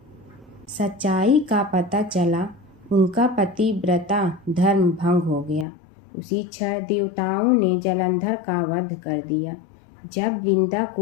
सच्चाई का पता चला उनका पतिव्रता धर्म भंग हो गया। उसी क्षण देवताओं ने जलंधर का वध कर दिया। जब वृंदा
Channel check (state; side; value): drops out; right; at 5.7 s